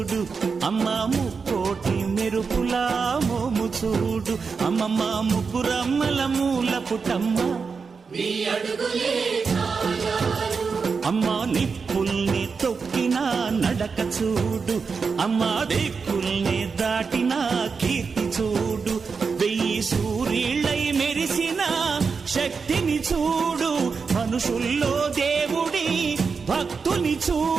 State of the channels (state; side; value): quieter; left; 5.2 dB